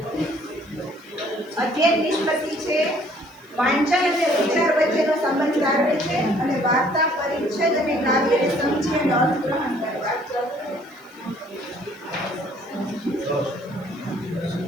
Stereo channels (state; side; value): noise; right; hiss, 28 dB below the sound